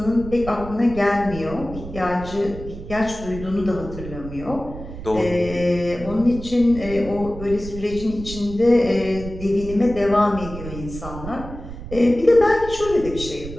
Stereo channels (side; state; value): right; noise; rumble, 11 dB below the sound